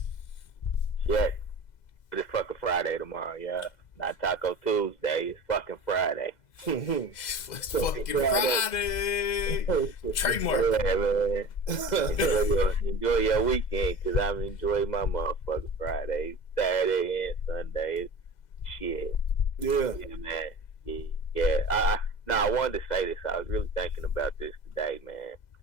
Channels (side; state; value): right; late; 2.0 ms